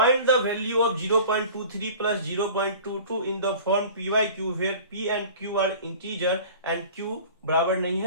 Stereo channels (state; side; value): inverted; both; correlation -0.42